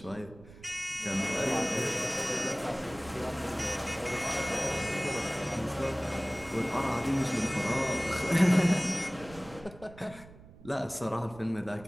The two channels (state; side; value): noise; right; rumble, 20 dB below the sound